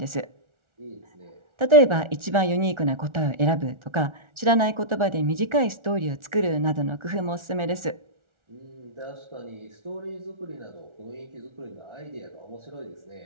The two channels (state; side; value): late; left; 1.4 ms